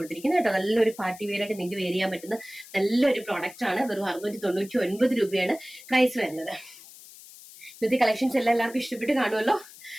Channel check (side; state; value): left; noise; hiss, 19 dB below the sound